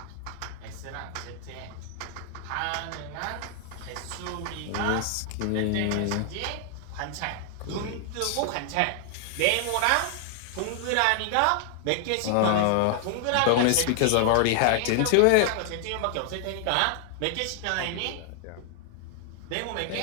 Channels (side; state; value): both; different; correlation 0.00